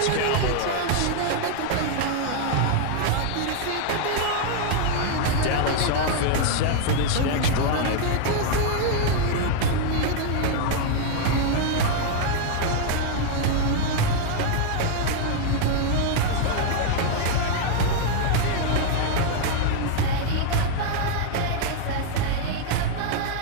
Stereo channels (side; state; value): both; different; correlation 0.00